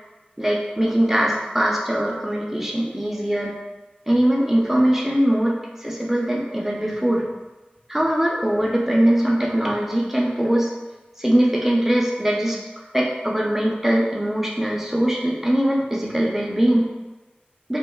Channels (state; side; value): normal; both; correlation 0.98